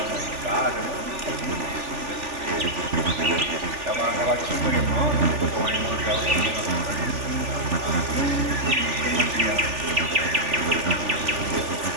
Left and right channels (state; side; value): late; left; 3.4 ms